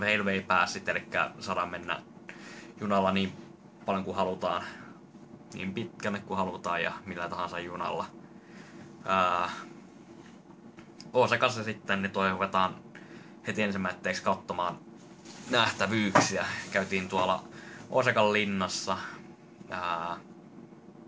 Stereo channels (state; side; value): identical; both; correlation 1.00